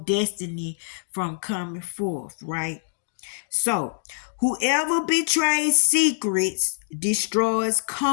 from coming forth, right? So, whoever betrays secrets destroys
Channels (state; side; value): silent; right; 62 dB below the other